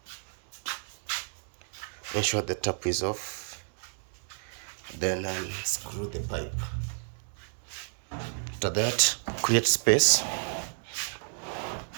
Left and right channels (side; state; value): left; silent; digital silence